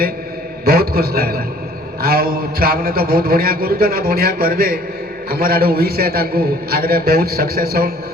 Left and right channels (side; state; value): both; normal; correlation 0.55